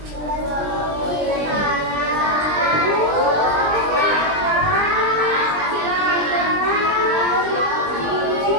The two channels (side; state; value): left; late; 20 ms